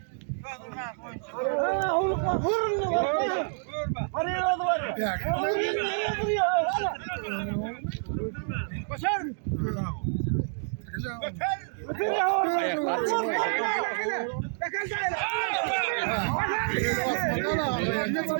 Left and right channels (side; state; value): left; silent; digital silence